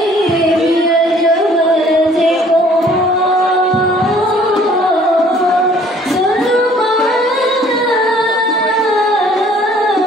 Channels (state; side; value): normal; both; correlation 0.56